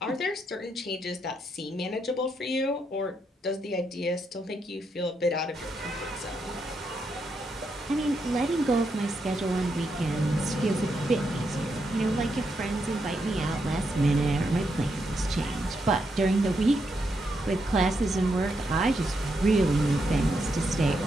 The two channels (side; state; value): both; normal; correlation 0.81